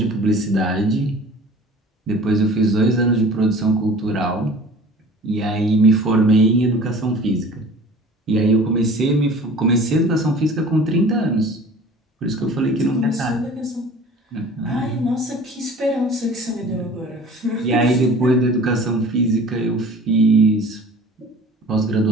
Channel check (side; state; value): both; normal; correlation 0.44